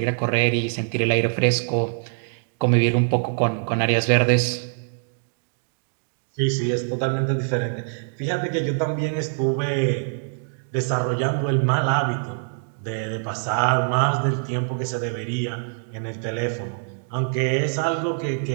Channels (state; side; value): silent; left; digital silence